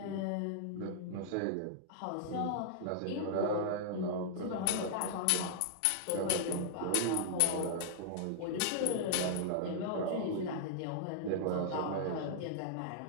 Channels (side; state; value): both; different; correlation -0.01